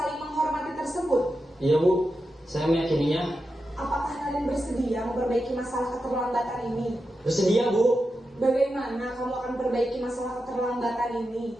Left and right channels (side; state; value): both; normal; correlation 0.89